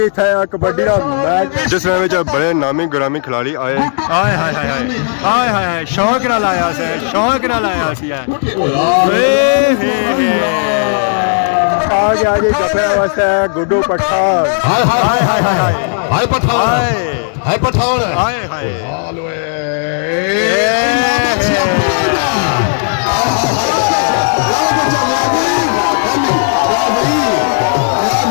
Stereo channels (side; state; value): right; silent; digital silence